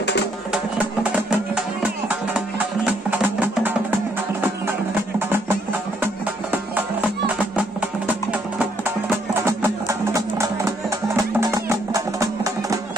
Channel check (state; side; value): normal; both; correlation 0.70